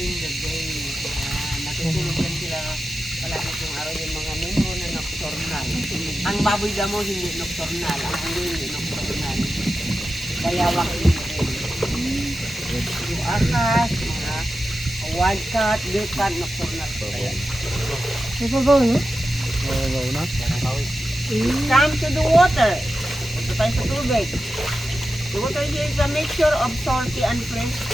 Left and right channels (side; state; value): both; normal; correlation 0.92